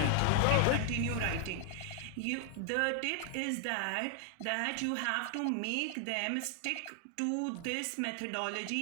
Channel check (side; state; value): both; different; correlation 0.00